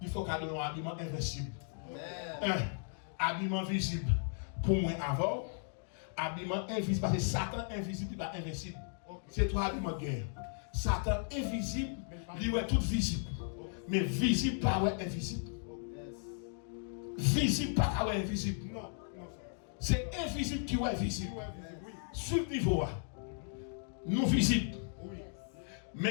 faut qu'on ait un habillement invincible. Un habillement visible pour moi avant, habillement invisible parce que Satan invisible n'est pas invincible. C'est trois habillements de guerre. Satan invisible, il est tout visible. Mais visible pas invisible. Visible pas invisible. C'est invisible qui est visible. Sur le niveau nous visibles. Oui.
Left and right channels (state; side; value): silent; right; digital silence